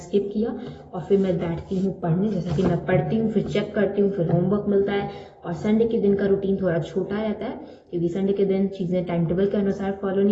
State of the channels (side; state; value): both; identical; correlation 1.00